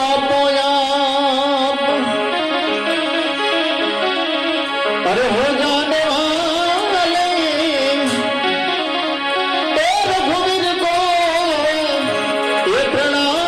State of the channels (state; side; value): identical; both; correlation 1.00